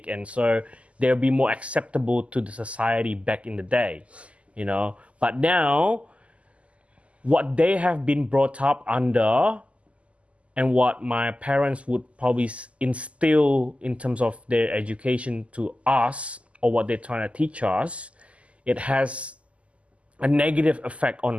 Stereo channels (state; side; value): late; left; 0.061 ms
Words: and so they'll be more acceptable to the society back in the day, But now, what they have been brought up under, and what my parents would probably instill in terms of their education to us, or what they're trying to teach us, it has a negative effect